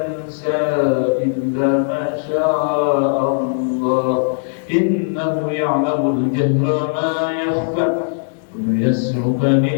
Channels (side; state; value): right; silent; digital silence